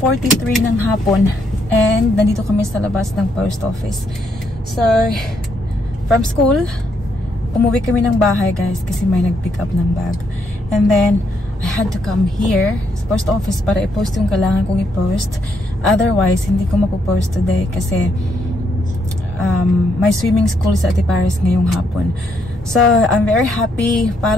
ng hapon. And, nandito kami sa labas ng post office. So, from school, umuwi kami ng bahay, guys, kasi may nag-pick up ng bag. And then, I had to come here sa post office para i-post yung kailangan kong i-post. Otherwise, hindi ko mapopost today kasi may swimming school sa Ate Paris ngayong hapon. So, I'm very happy.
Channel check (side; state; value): both; normal; correlation 0.75